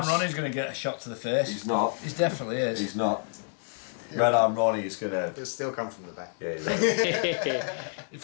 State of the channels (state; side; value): silent; right; digital silence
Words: Ronnie's going to get a shot to the face. He's not. He definitely is. He's not. Red Arm Ronnie is gonna. It'll still come from the back. Yeah, he's right. In